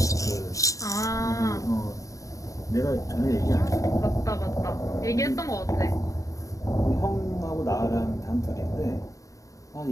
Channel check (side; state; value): right; late; 0.16 ms